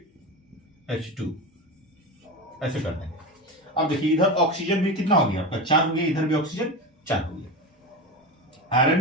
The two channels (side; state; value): both; normal; correlation 0.22